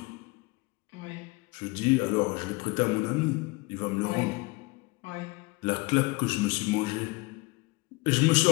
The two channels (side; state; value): right; quieter; 24.7 dB